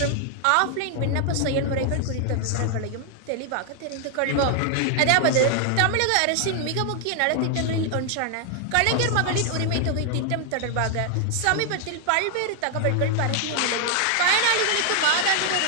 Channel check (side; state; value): both; different; correlation 0.00